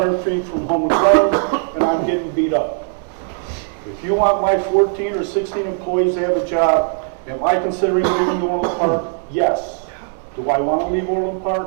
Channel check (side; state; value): left; silent; digital silence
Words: feet from home and friends, and I'm getting beat up. If you want my 14 or 16 employees to have a job, am I considering leaving Orland Park? Yes. Do I want to leave Orland